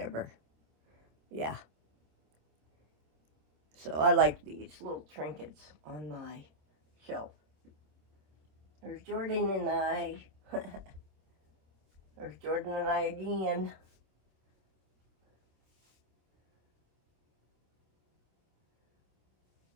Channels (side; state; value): left; late; 26 ms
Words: Yeah. So I like these little trinkets on my shelf. There's Jordan and I. There's Jordan and I again.